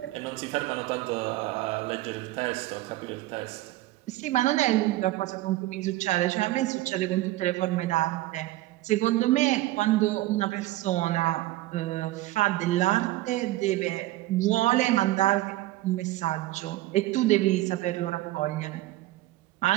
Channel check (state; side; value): quieter; left; 17.0 dB